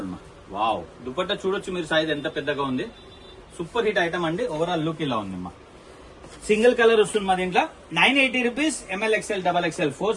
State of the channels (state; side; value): identical; both; correlation 1.00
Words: వావ్, దుపట్టా చూడొచ్చు మీరు, సైజ్ ఎంత పెద్దగా ఉంది. సూపర్ హిట్ ఐటమ్ అండి. ఓవరాల్ లుక్ ఇలా ఉంది మా. సింగిల్ కలర్ వస్తుంది మా దీంట్లో. 980 rupees. ML XL XXL 4